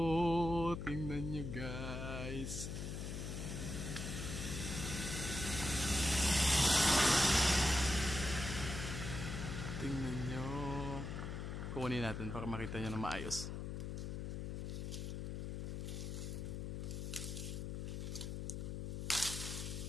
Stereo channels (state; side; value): noise; left; hum, 4 dB below the sound